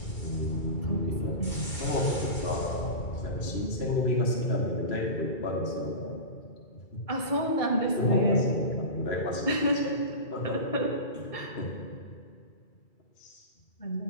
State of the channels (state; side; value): late; right; 2.3 ms